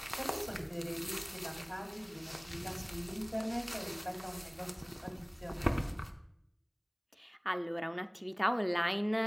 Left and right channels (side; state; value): both; identical; correlation 1.00